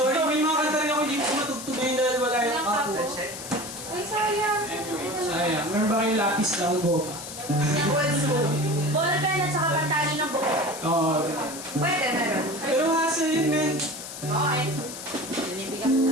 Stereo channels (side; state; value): left; noise; hiss, 10 dB below the sound